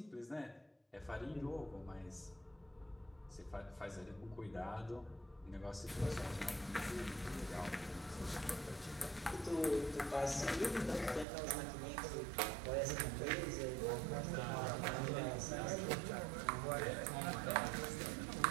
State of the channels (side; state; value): left; drops out; at 11.2 s